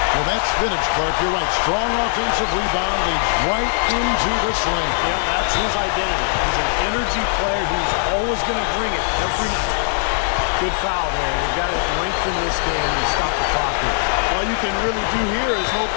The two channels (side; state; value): right; silent; 64 dB below the other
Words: Well, that's vintage, Clark. You're right. Strong offensive rebound leads right into the slam. Yep, that's his identity. He's an energy player who's always going to bring it every night. Good foul there. They've got to lengthen this game and stop the clock here. All you can really do here is hope